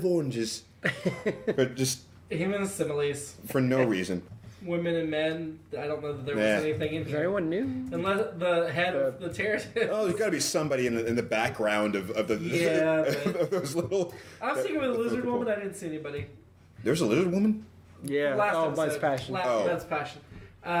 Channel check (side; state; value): both; identical; correlation 1.00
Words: oranges, but just Human similes. for no reason. Women and men. I don't know that there was anything in Is there here. anyone new? Unless the head of the Terratin. Oh, there's got to be somebody in the background of the of those little. I was thinking with the lizard woman. I didn't see anybody. There's a lizard woman. Yeah. Last Mud's episode. Passion. Mud's Passion.